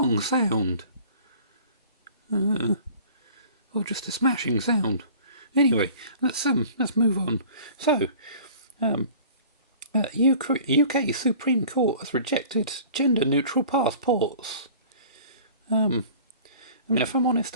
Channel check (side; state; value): both; inverted; correlation -0.47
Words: sound? or just a smashing sound. Anyway, let's move on. So, UK Supreme Court has rejected gender-neutral passports. I mean, if I'm honest,